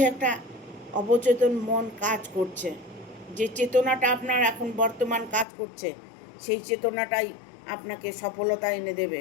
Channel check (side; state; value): right; drops out; at 5.5 s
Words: একটা অবচেতন মন কাজ করছে, যে চেতনাটা আপনার এখন বর্তমান কাজ করছে, সেই চেতনাটাই আপনাকে সফলতা এনে দেবে।